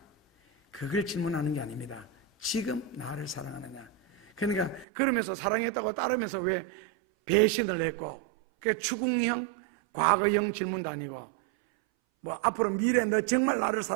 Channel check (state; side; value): drops out; left; at 4.9 s